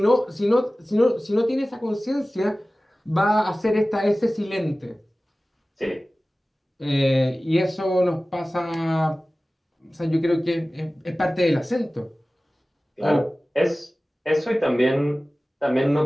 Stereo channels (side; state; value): both; normal; correlation 0.97